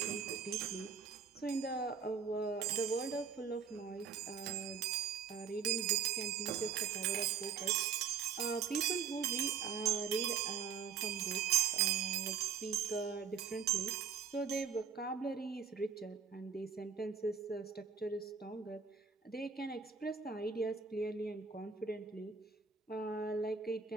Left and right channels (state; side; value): quieter; left; 6.5 dB